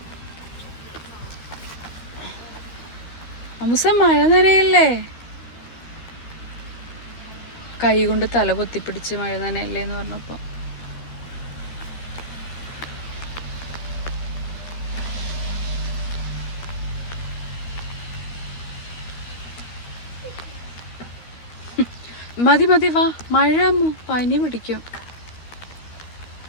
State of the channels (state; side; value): late; right; 12 ms